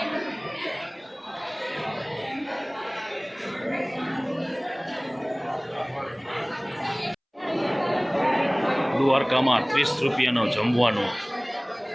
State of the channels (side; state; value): both; identical; correlation 1.00